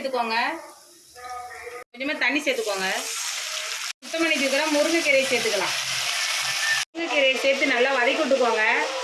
கொஞ்சமாக தண்ணி சேர்த்துக்கோங்க. சுத்தம் பண்ணி வச்சுக்கிற முருங்கைக்கீரையை சேர்த்துக்கலாம். முருங்கைக்கீரையை சேர்த்து நல்லா வதக்கி விட்டுக்கோங்க.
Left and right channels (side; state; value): both; identical; correlation 1.00